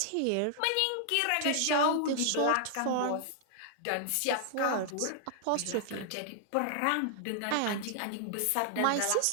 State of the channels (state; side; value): different; both; correlation -0.01